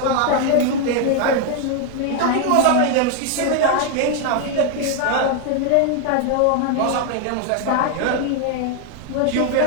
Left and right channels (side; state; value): both; different; correlation 0.01